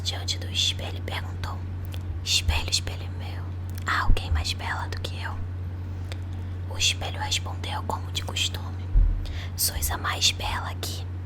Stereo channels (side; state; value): both; identical; correlation 1.00